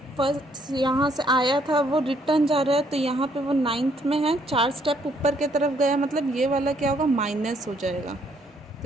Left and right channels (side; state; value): both; normal; correlation 0.68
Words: फर्स्ट यहाँ से आया था, वो रिटर्न जा रहा है, तो यहाँ पे वो 9th में है, 4 स्टेप ऊपर की तरफ गया, मतलब ये वाला क्या होगा, माइनस हो जाएगा।